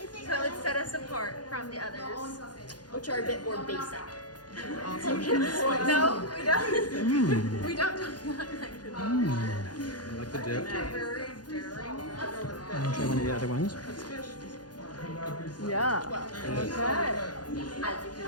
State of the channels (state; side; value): late; right; 0.69 ms